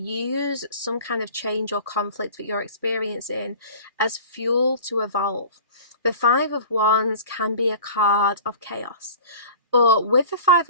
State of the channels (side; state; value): both; inverted; correlation -0.41